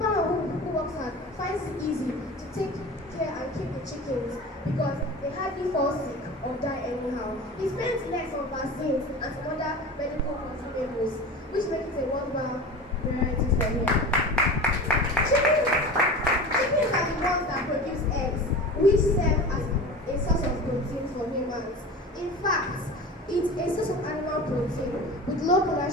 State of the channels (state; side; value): normal; both; correlation 0.33